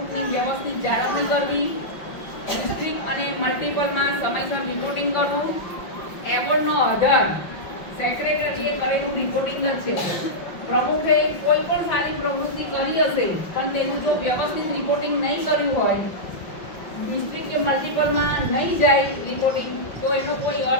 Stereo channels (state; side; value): late; right; 5.5 ms